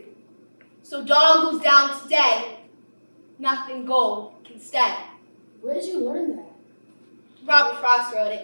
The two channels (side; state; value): both; inverted; correlation -1.00